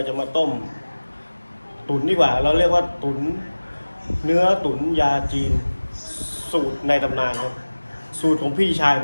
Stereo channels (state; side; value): inverted; both; correlation -1.00